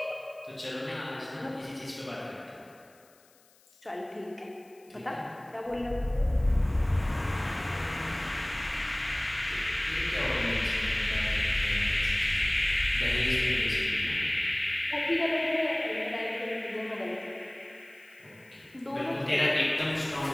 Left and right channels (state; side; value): noise; left; hiss, 30 dB below the sound